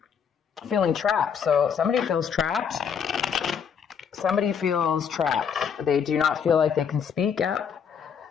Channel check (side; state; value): right; quieter; 7.2 dB